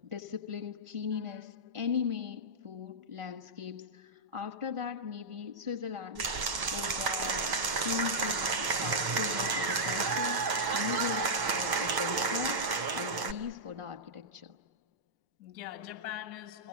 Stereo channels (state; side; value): late; left; 1.0 ms